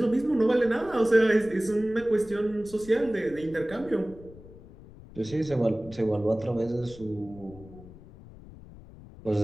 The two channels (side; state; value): left; noise; rumble, 19 dB below the sound